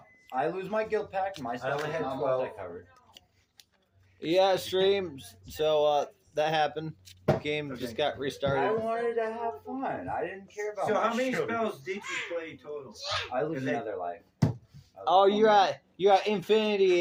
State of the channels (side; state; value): both; identical; correlation 1.00